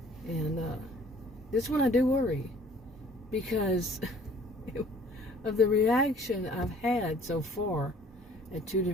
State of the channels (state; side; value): normal; both; correlation 0.54